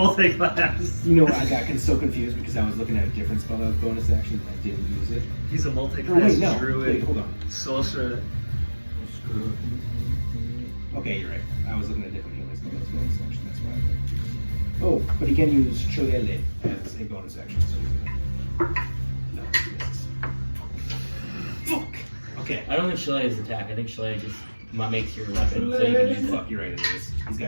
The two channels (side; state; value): both; inverted; correlation -1.00